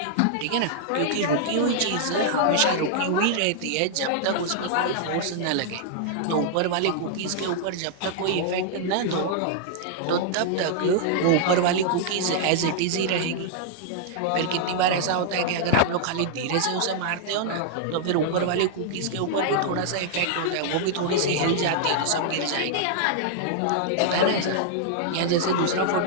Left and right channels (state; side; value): different; both; correlation -0.01